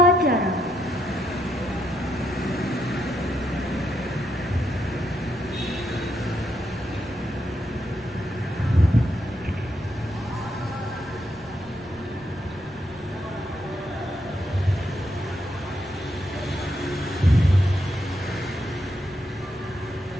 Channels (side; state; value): right; noise; rumble, 24 dB below the sound